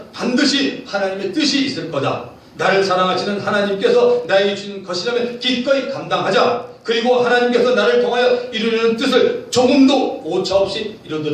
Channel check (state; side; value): identical; both; correlation 1.00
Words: 반드시 하나님의 뜻이 있을 거다. 나를 사랑하시는 하나님께서 나에게 주는 것이라면 기꺼이 감당하자. 그리고 하나님께서 나를 통하여 이루려는 뜻을 조금도 오차없이